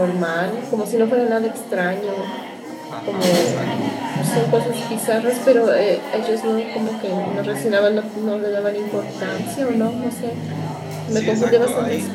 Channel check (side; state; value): both; identical; correlation 1.00